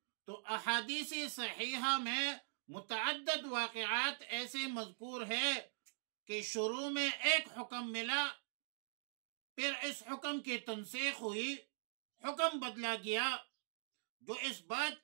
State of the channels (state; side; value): silent; left; digital silence